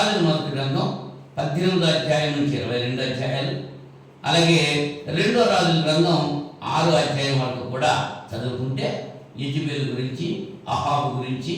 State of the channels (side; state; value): both; identical; correlation 1.00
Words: మొదటి గ్రంథం 18వ అధ్యాయం నుంచి 22 అధ్యాయాలు, అలాగే 2వ రాజుల గ్రంథం 6వ అధ్యాయం వరకు కూడా చదువుకుంటే యెజబెలు గురించి, అహాబు గురించి